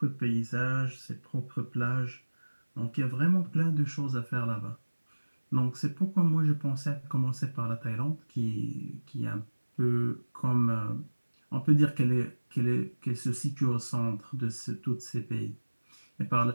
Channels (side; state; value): both; inverted; correlation -1.00